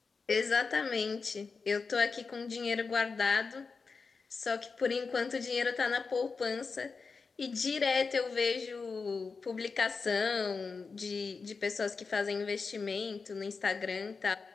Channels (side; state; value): right; quieter; 4.7 dB